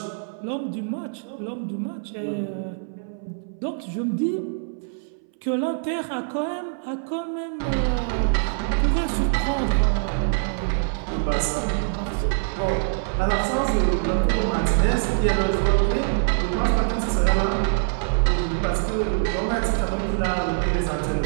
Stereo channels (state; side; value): silent; left; 61 dB below the other